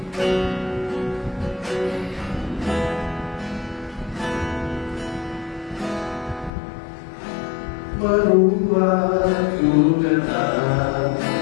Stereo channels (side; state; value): right; drops out; at 6.5 s